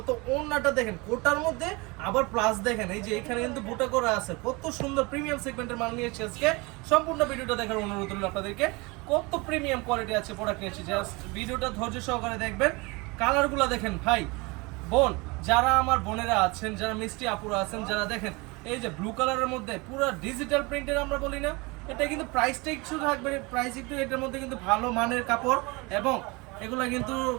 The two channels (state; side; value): quieter; left; 26.0 dB